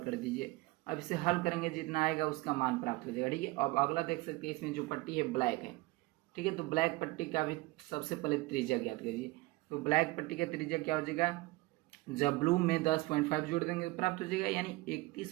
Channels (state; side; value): quieter; left; 21.0 dB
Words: कर दीजिए। अब इसे हल करेंगे जितना आएगा उसका मान प्राप्त हो जाएगा। ठीक है, अब अगला देख सकते हैं इसमें जो पट्टी है ब्लैक है, ठीक है। तो ब्लैक पट्टी का भी सबसे पहले त्रिज्या ज्ञात करिए। तो ब्लैक पट्टी का त्रिज्या क्या हो जाएगा, जब ब्लू में 10.5 जोड़ देंगे तो प्राप्त हो जाएगा, यानी